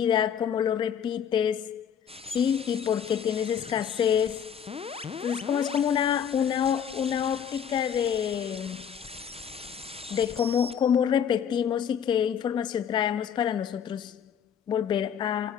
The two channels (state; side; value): quieter; right; 8.2 dB